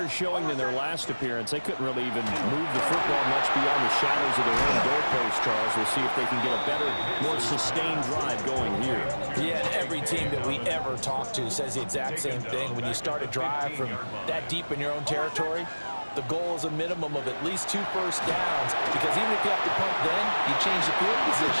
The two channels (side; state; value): both; inverted; correlation -1.00